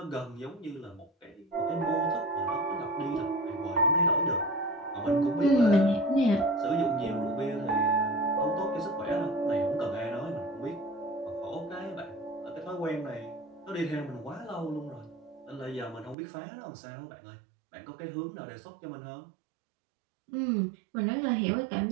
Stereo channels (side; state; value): left; drops out; at 16.2 s